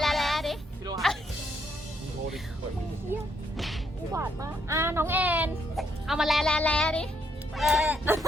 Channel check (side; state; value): both; normal; correlation 0.73